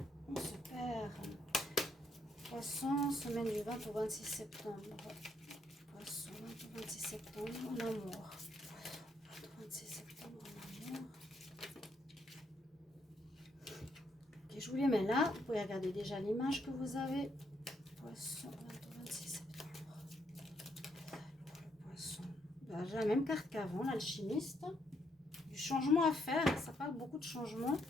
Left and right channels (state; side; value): normal; both; correlation 0.74